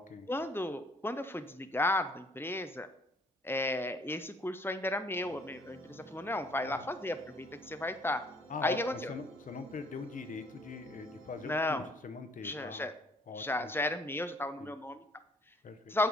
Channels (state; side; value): normal; both; correlation 0.61